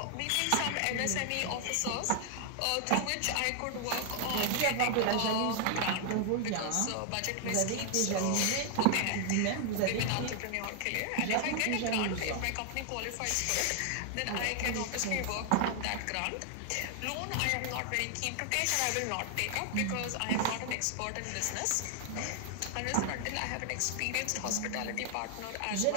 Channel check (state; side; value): different; both; correlation 0.00